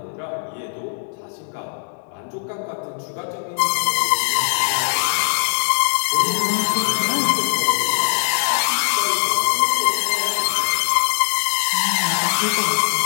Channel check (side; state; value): right; silent; digital silence